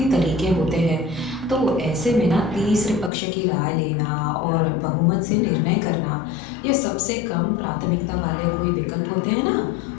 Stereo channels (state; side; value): drops out; right; at 3.1 s